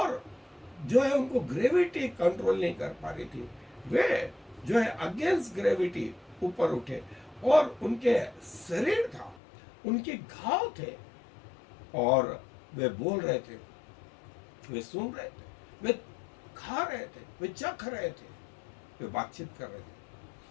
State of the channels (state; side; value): drops out; right; at 9.4 s